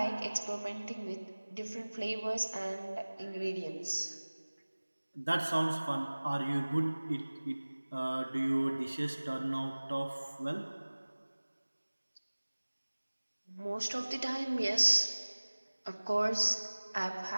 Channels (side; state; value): both; inverted; correlation -1.00